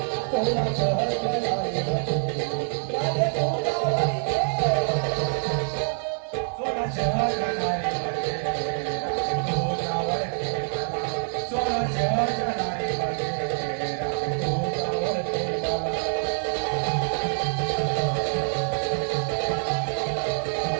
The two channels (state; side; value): silent; left; digital silence